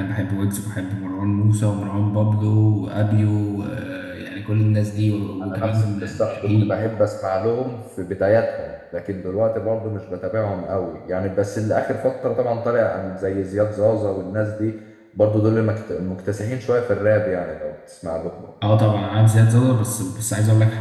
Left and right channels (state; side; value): identical; both; correlation 1.00